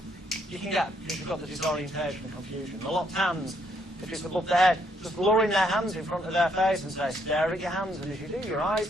you can get, if you've got the disorientation and confusion. The locked hands, if it's above their head, just lowering their hands in front of their face and say, stare at your hands, and as you do, your eyes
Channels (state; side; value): normal; both; correlation 0.71